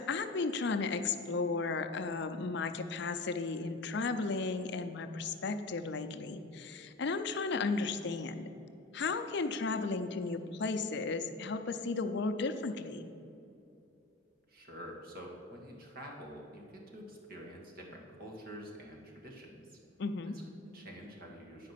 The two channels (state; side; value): quieter; right; 3.4 dB